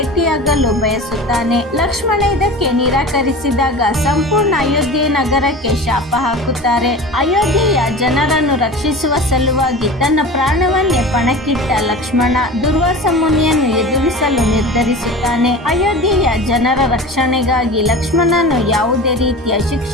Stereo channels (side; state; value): both; normal; correlation 0.34